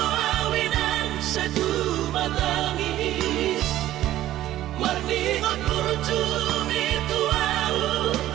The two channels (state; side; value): quieter; left; 13.9 dB